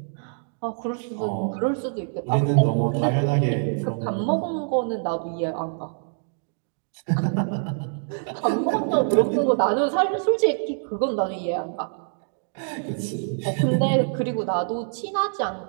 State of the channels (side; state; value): left; silent; digital silence